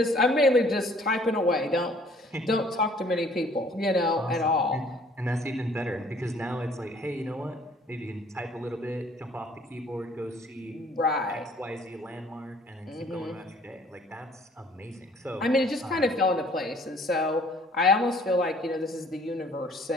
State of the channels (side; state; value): both; normal; correlation 0.57